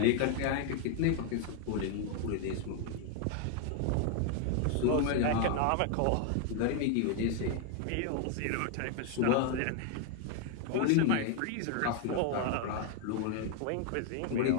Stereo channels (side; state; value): both; different; correlation 0.00